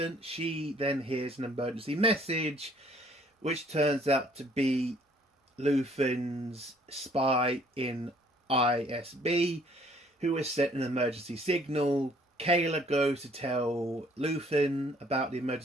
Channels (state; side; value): normal; both; correlation 0.61